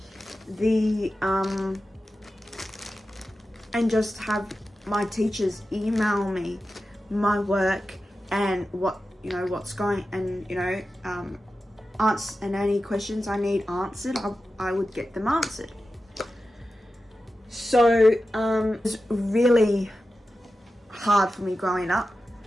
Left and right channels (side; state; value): both; normal; correlation 0.92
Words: the, and just have my teachers email me my work and what, you know, what's going, and, you know, and any questions I need answered, I would get them answered. So, it was really hard for me growing up.